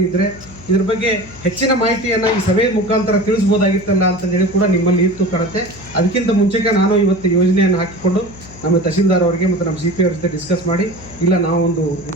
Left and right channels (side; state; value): left; noise; hum, 19 dB below the sound